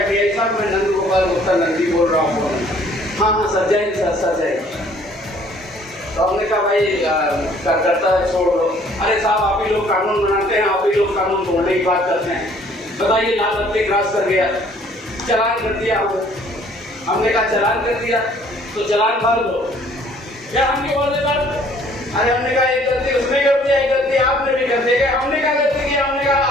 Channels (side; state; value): both; normal; correlation 0.58